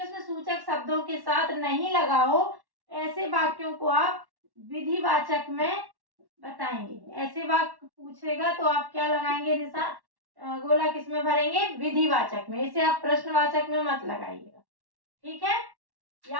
सूचक शब्दों के साथ नहीं लगा हो, ऐसे वाक्यों को आप विधिवाचक में बताएंगे। ऐसे वाक्य पूछेगा तो आप क्या लगाएंगे निशान, गोला किसमें भरेंगे? विधिवाचक में। इसे आप प्रश्नवाचक में मत लगाइएगा, ठीक है,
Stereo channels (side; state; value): left; late; 1.1 ms